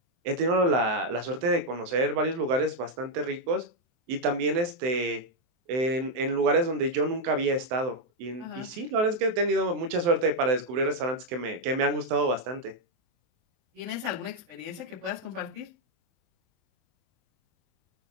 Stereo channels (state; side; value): late; left; 23 ms